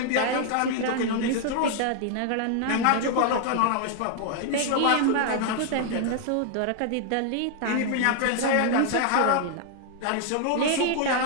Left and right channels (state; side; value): different; both; correlation 0.00